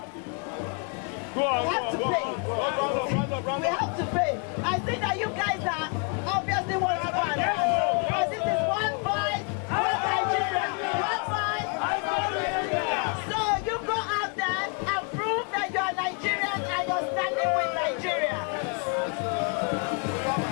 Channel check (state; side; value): quieter; right; 36.8 dB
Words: we have to pay. We have to pay. I think that you guys are obviously want to go and run. But this is one voice, one Nigeria, one voice. So you go out there and prove that you are Nigerian and you're standing with Nigeria.